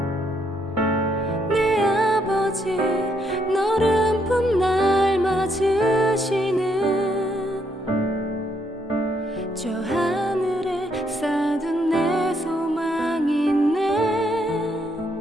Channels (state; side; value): normal; both; correlation 0.74